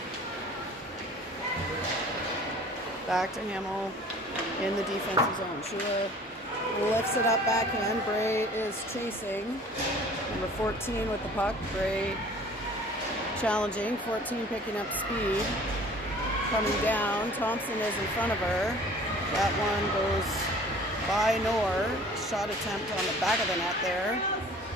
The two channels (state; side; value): normal; both; correlation 0.48